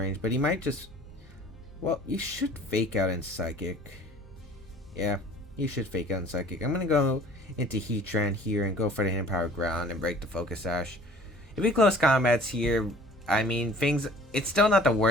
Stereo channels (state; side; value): normal; both; correlation 0.49